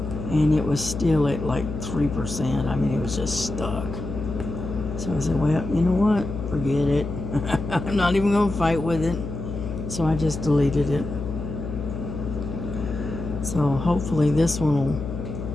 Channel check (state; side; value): noise; left; hum, 6 dB below the sound